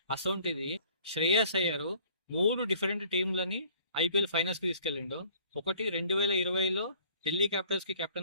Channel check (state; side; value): inverted; both; correlation -0.54